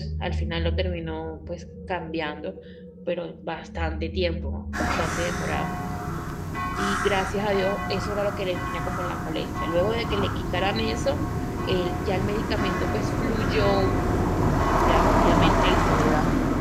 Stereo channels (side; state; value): both; identical; correlation 1.00